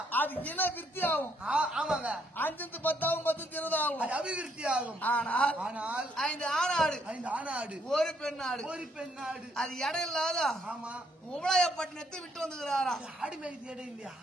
அது இன விருத்தி ஆகும். ஆமாங்க. 5 10 ஆகும் 10 20 ஆகும். அது அபிவிருத்தி ஆகும். ஆனால் ஆனால் 5 ஆணாடு 5 ஆணாடு ஒரு பெண்ணாடு. ஒரு பெண்ணாடு. அது இடம் இல்லாத ஆமா. உபலாயப்பட்டினத்தை விட்டு வந்துக்கிறாரா. ஆடு மேய்க்கு இடம் இல்லையா?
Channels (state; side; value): normal; both; correlation 0.71